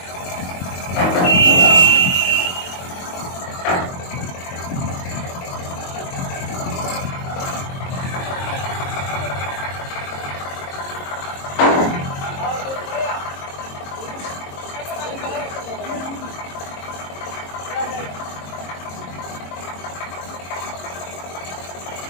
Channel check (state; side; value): late; right; 22 ms